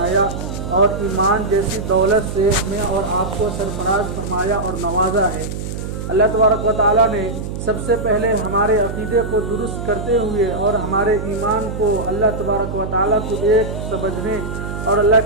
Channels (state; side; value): noise; right; hum, 6 dB below the sound